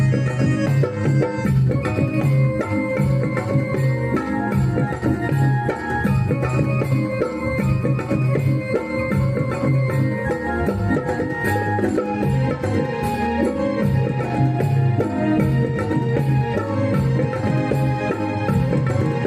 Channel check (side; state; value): both; identical; correlation 1.00